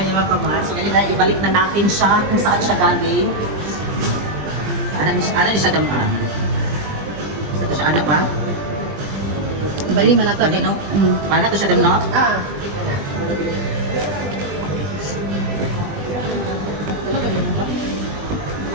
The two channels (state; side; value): late; left; 20 ms